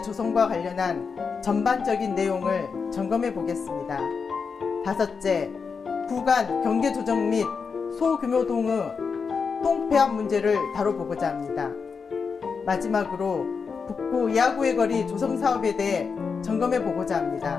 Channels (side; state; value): right; quieter; 5.5 dB